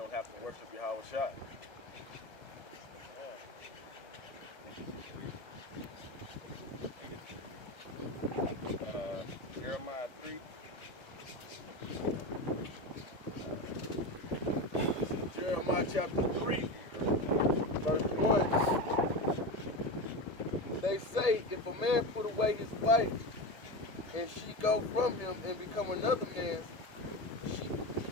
have to worship Yahweh Shai. Jeremiah 3. This is Jeremiah chapter 3, verse 1. They say, if a man put away his wife, and she go from him and become another man's,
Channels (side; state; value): right; late; 1.8 ms